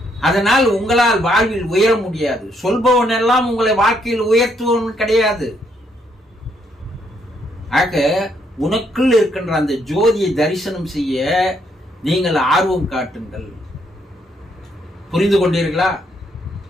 அதனால் உங்களால் வாழ்வில் உயர முடியாது. சொல்பவன் எல்லாம் உங்களை வாழ்க்கையில் உயர்த்துவன் கிடையாது. ஆக உனக்குள் இருக்கின்ற அந்த ஜோதியை தரிசனம் செய்ய நீங்கள் ஆர்வம் காட்டுங்கள். புரிந்து கொண்டீர்களா?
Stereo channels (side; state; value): both; normal; correlation 0.73